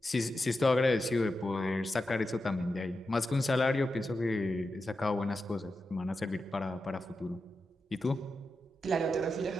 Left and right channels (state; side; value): normal; both; correlation 0.89